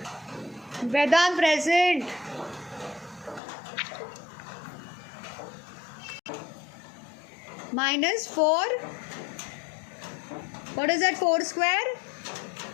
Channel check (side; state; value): right; drops out; at 3.4 s